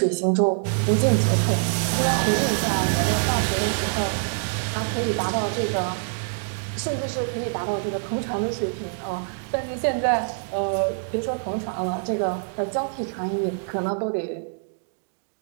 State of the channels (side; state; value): left; silent; digital silence